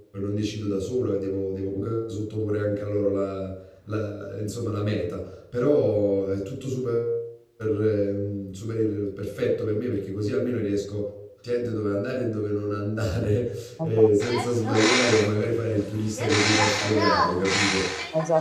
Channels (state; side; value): identical; both; correlation 1.00